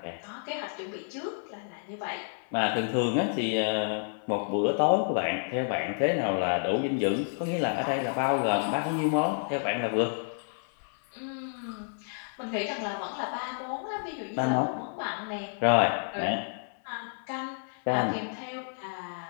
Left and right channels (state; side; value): silent; right; 55 dB below the other